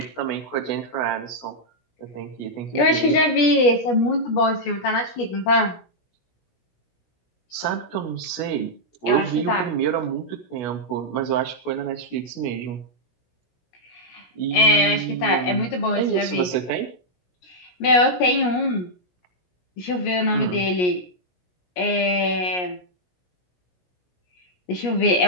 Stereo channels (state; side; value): late; right; 17 ms